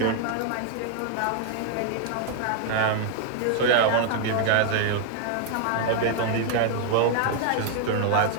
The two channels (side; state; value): both; different; correlation 0.00